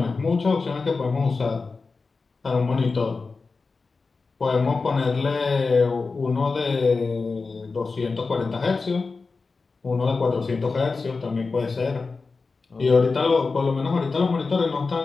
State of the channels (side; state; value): right; quieter; 4.2 dB